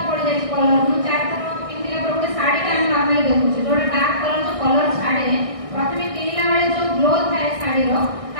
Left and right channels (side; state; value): left; late; 1.6 ms